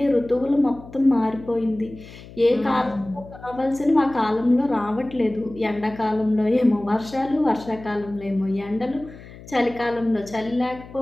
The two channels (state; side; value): noise; left; hum, 18 dB below the sound